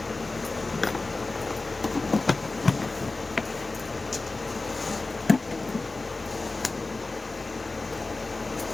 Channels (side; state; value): right; quieter; 3.4 dB